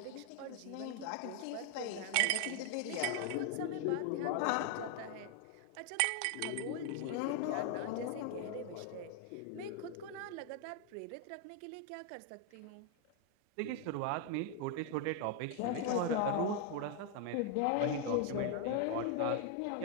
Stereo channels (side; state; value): both; different; correlation 0.00